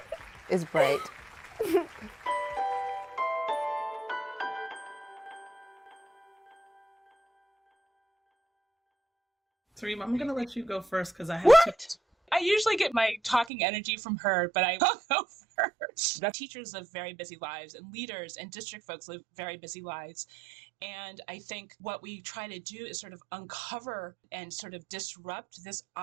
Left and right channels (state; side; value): drops out; left; at 13.5 s